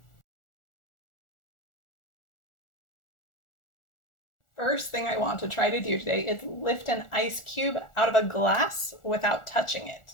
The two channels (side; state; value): right; late; 1.4 ms